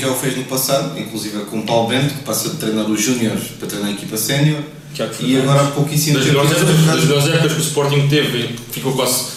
o fez no passado, inclusive com o Paulo Bento, que passa de treinar os Júniores para treinar a equipa sénior, e agora há pouquíssimo Das tempo. melhores épocas que o Sporting teve, ficou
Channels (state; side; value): identical; both; correlation 1.00